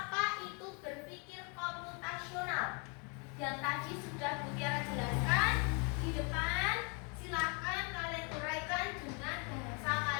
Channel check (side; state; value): right; quieter; 34.0 dB